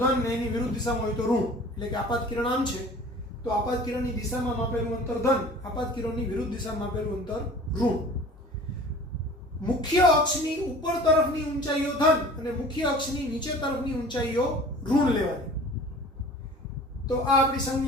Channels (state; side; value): normal; both; correlation 0.44